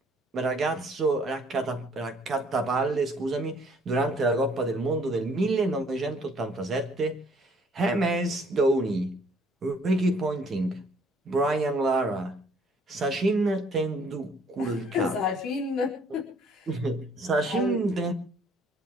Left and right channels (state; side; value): normal; both; correlation 0.61